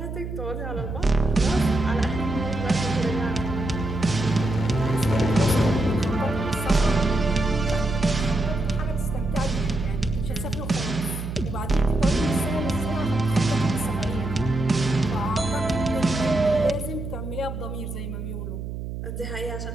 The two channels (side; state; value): right; noise; hum, 7 dB below the sound